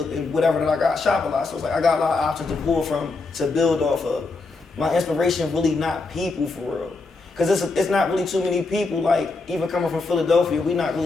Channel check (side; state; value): right; quieter; 3.7 dB